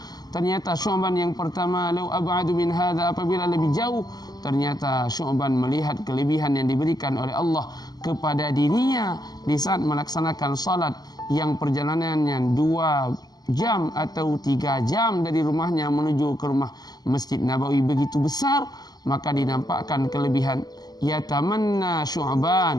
Ternyata Syu'ban yang pertama, lau ab'adu min hadza, apabila lebih jauh, ternyata Syu'ban melihat kelebihan yang diberikan oleh Allah kepada dirinya di saat melaksanakan salat yang perjalanannya 2 jam atau 3 jam dari rumahnya menuju ke rumah Masjid Nabawi begitu besar, maka dinampakkan kelebihan. Yatamanna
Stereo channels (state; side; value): late; right; 0.19 ms